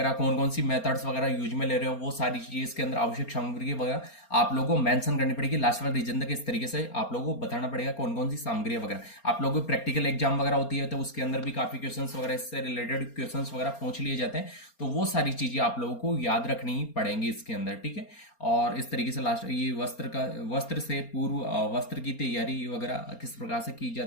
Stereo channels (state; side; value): late; right; 4.3 ms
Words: कौन कौन सी मेथड्स वगैरह यूज में ले रहे हो, वो सारी चीजें इसके अंदर आवश्यक सामग्री वगैरह आप लोगों को मेंशन करनी पड़ेगी। लास्ट वाला रीजन तक इस तरीके से आप लोगों को बताना पड़ेगा कौन कौन सी सामग्री वगैरह। आप लोगों को प्रैक्टिकल एग्जाम वगैरह होती है तो उसके अंदर भी काफी क्वेश्चंस वगैरह इससे रिलेटेड क्वेश्चंस वगैरह पूछ लिए जाते हैं, तो वो सारी चीजें आप लोगों को याद रखनी पड़ेंगी इसके अंदर, ठीक है। और इस तरीके से लास्ट ये वस्त्र से पूर्व वस्त्र की तैयारी वगैरह किस प्रकार से की